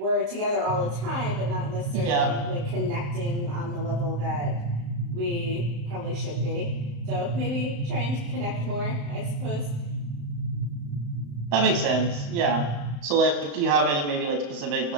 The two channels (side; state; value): left; late; 35 ms